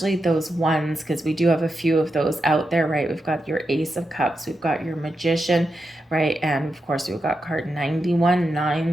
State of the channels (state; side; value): normal; both; correlation 0.87